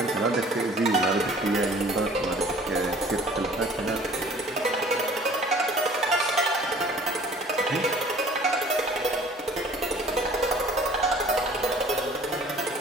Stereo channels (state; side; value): normal; both; correlation 0.51